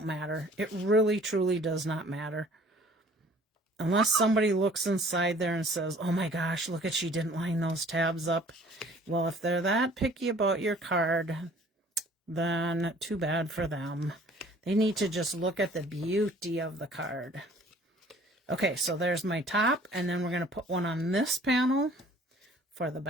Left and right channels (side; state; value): both; normal; correlation 0.53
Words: matter. It really, truly does not matter. Unless somebody looks inside there and says, oh my gosh, look at, she didn't line those tabs up. Well, if they're that picky about your card, then too bad for them. They need to just look at the beauty of the card. Okay, so there's my top, and then we're going to put one on this panel for the